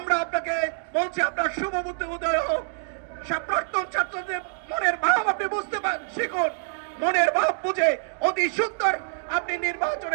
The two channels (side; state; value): left; silent; digital silence